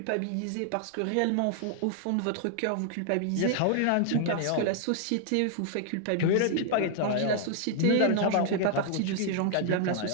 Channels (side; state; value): both; different; correlation -0.01